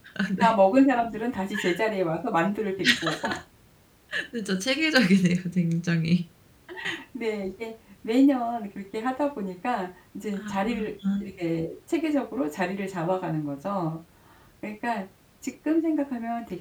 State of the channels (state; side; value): identical; both; correlation 1.00